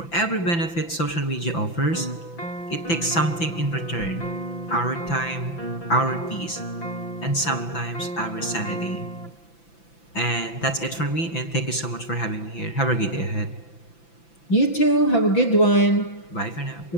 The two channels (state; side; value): late; right; 5.9 ms